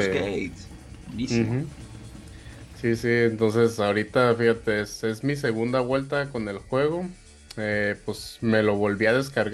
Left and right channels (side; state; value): both; identical; correlation 1.00